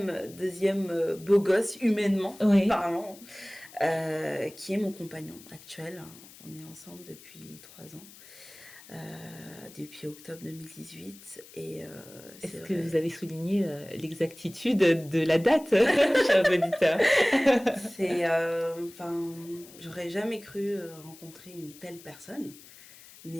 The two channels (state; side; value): noise; left; hiss, 20 dB below the sound